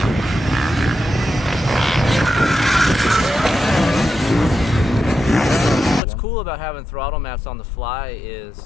What's cool about having throttle maps on the fly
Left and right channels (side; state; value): right; drops out; at 6.0 s